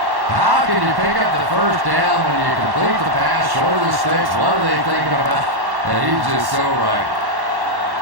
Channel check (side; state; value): left; late; 1.1 ms